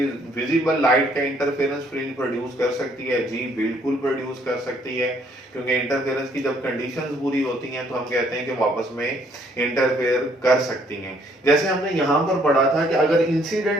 visible light का इंटरफेरेंस फ्रिंज प्रोड्यूस कर सकती है? जी बिल्कुल प्रोड्यूस कर सकती है, क्योंकि इंटरफेरेंस की जब कंडीशंस पूरी होती हैं तो हम कहते हैं कि वापस में इंटरफेयर कर सकती हैं। जैसे हमने यहाँ पर पढ़ा था कि अगर इंसिडेंट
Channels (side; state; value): both; normal; correlation 0.65